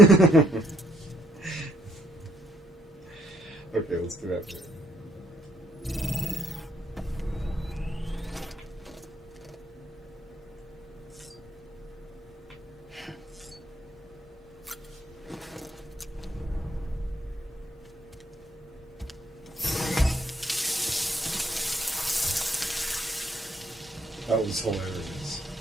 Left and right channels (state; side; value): normal; both; correlation 0.71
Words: Okay, let's do that. That was hilarious.